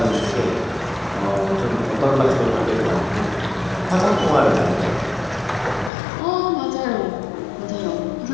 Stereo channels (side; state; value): right; drops out; at 5.9 s